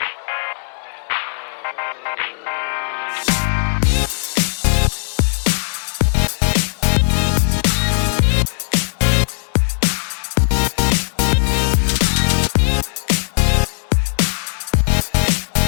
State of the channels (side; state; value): right; silent; 67 dB below the other